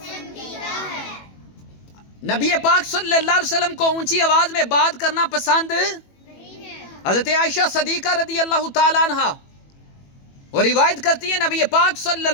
ہے۔ نبی پاک صلی اللہ علیہ وسلم کو اونچی آواز میں بات کرنا پسند نہیں ہے۔ حضرت عائشہ صدیقہ رضی اللہ تعالیٰ عنہا اور روایت کرتی ہے، نبی پاک صلی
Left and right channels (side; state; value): right; late; 21 ms